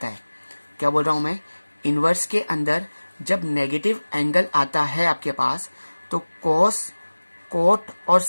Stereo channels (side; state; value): both; inverted; correlation -1.00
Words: है क्या बोल रहा हूं मैं, इनवर्स के अंदर जब नेगेटिव एंगल आता है आपके पास तो कोस, कोट और